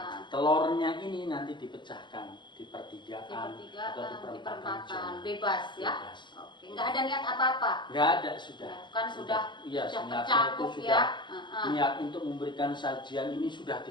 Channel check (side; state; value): right; late; 0.22 ms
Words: telurnya ini nanti dipecahkan di pertigaan atau di perempatan, bebas ya. Bebas. Oke, nggak ada niat apa-apa. Nggak ada, sudah. Ya, kan sudah tercakup ya. Niat untuk memberikan sajian ini sudah